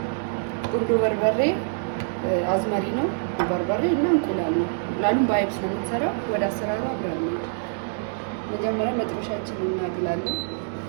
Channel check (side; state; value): left; silent; digital silence